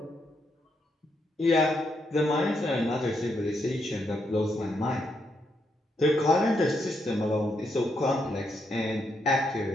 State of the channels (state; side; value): normal; both; correlation 0.79